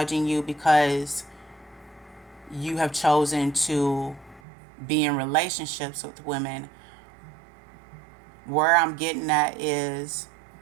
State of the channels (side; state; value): left; drops out; at 4.4 s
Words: you because you have chosen to be in relationships with women. Where I'm getting at is,